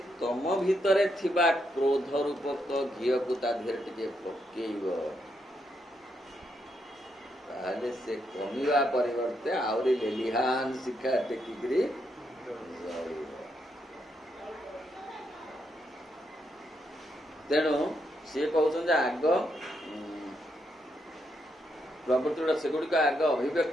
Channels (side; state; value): both; normal; correlation 0.79